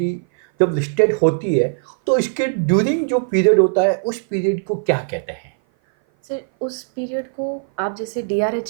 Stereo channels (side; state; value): left; silent; 57 dB below the other